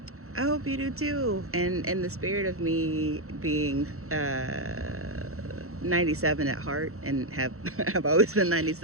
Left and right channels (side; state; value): left; late; 0.63 ms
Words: I hope you do too. And in the spirit of me being 97 at heart, and have always been